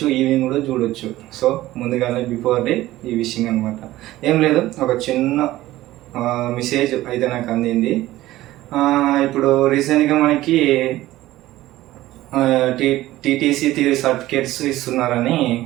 ఈవినింగ్ కూడా చూడొచ్చు. సో ముందుగానే బిఫోర్ డే ఈ విషయం అనమాట. ఏం లేదు, ఒక చిన్న మెసేజ్ అయితే నాకు అందింది. ఇప్పుడు రీసెంట్గా మనకి టీటీసీ థియరీ సర్టిఫికేట్స్ ఇస్తున్నారని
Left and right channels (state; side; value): quieter; left; 16.1 dB